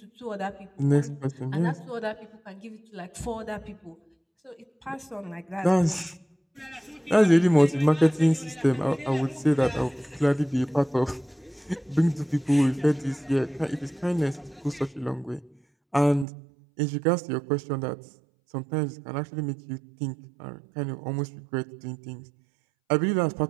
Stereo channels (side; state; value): left; drops out; at 16.2 s